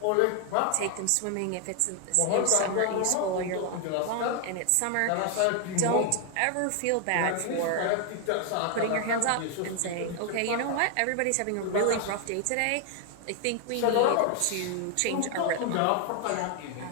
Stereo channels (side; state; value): both; different; correlation 0.00